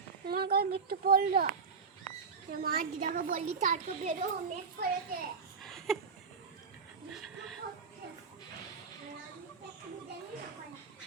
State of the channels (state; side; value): quieter; left; 5.4 dB